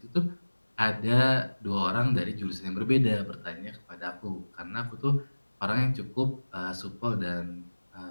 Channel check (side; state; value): both; inverted; correlation -1.00